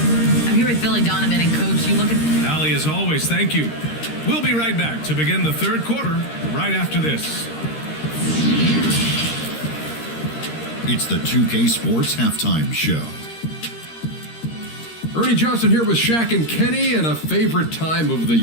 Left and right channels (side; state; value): right; late; 13 ms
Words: I'm here with Billy Donovan, and Coach, you look at... Allie, as always, thank you. We'll be right back to begin the third quarter right after this. It's the 2K Sports Halftime Show. Ernie Johnson here with Shaq and Kenny, and a favorite time of the